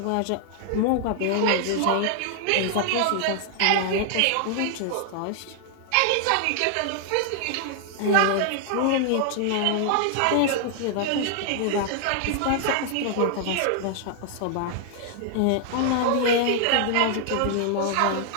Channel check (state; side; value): different; both; correlation 0.00